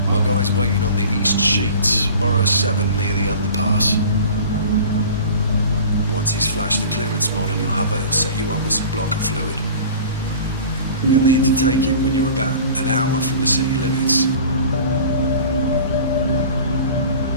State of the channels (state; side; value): inverted; both; correlation -0.41